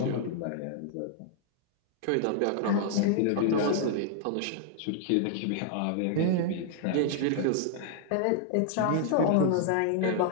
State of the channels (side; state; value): both; different; correlation -0.01